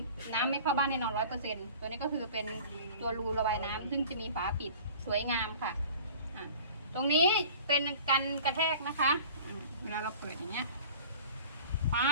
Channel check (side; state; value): both; inverted; correlation -0.43